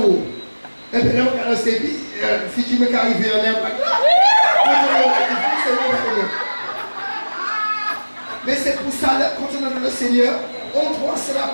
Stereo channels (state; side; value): inverted; both; correlation -1.00